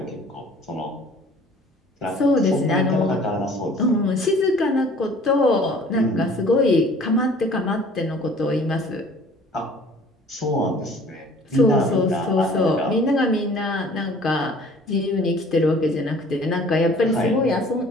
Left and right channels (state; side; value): normal; both; correlation 0.51